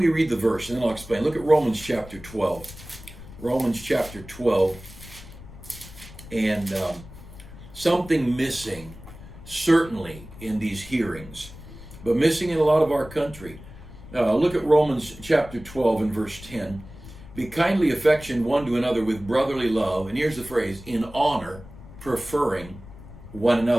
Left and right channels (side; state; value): left; noise; rumble, 17 dB below the sound